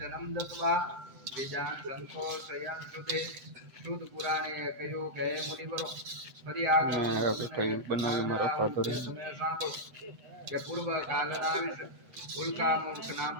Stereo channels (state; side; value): late; left; 8.1 ms